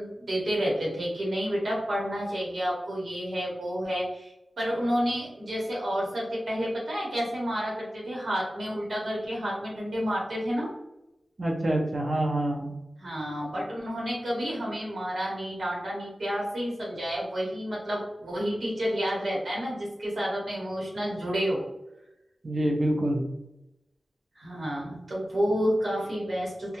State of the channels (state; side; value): normal; both; correlation 0.94